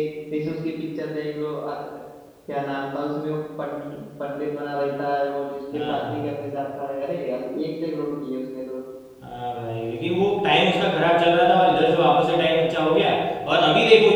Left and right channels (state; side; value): identical; both; correlation 1.00